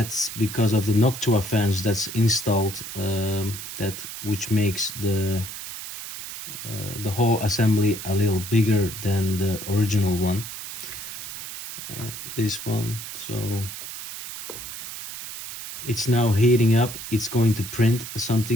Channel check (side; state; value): right; noise; hiss, 9 dB below the sound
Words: because of the Noctua fans that's installed, which makes the whole assembly a little bigger than the original one. This one, so it's now heating up. It's going to print